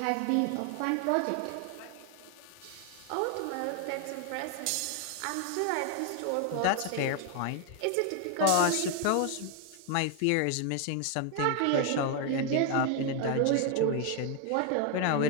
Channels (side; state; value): both; different; correlation 0.01